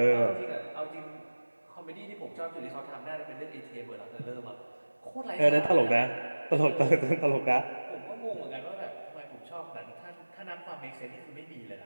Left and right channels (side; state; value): both; inverted; correlation -1.00